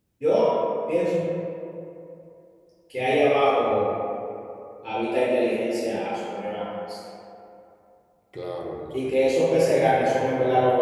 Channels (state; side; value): identical; both; correlation 1.00